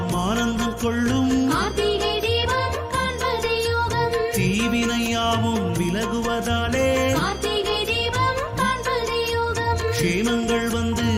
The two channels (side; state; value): both; identical; correlation 1.00